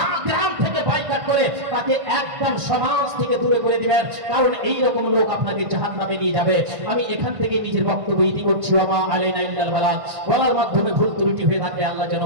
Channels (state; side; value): late; left; 1.5 ms